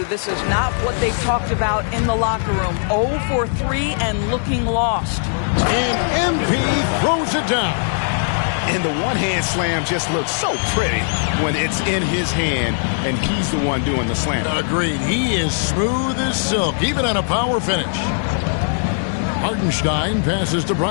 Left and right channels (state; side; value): silent; right; 66 dB below the other